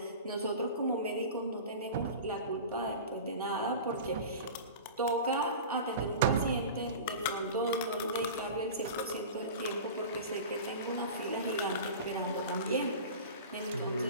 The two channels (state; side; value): inverted; both; correlation -0.34